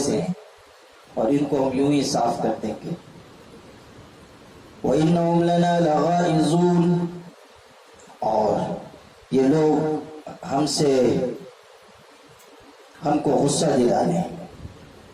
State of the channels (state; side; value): identical; both; correlation 1.00